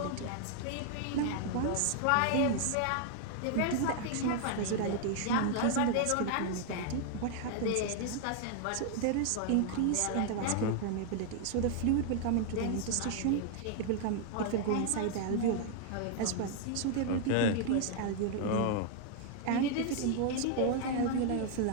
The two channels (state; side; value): different; both; correlation 0.00